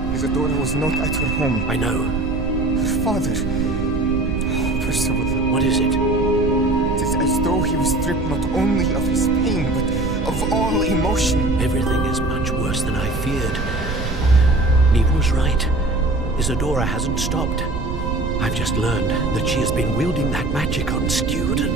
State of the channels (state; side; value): noise; right; rumble, 5 dB below the sound